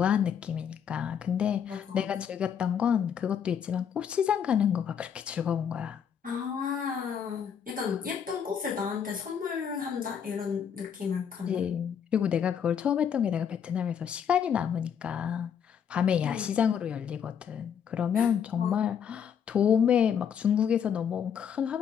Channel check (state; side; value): quieter; right; 7.9 dB